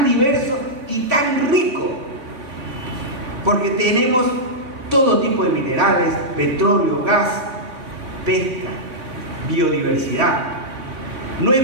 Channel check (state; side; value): late; left; 3.8 ms